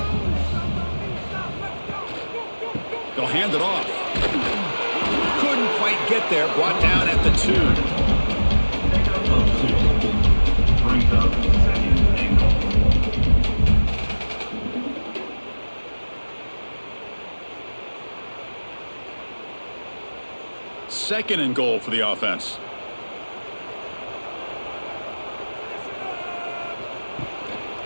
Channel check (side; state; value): both; inverted; correlation -1.00